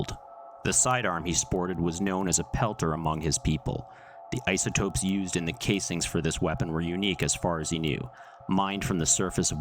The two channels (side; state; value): both; identical; correlation 1.00